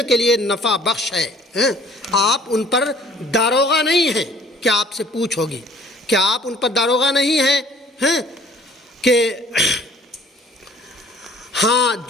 کے لیے نفع بخش ہے۔ آپ ان پر داروغہ نہیں ہیں کہ آپ سے پوچھ ہوگی، کہ آپ ان پر داروغہ نہیں ہیں کہ ہاں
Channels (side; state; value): both; normal; correlation 0.54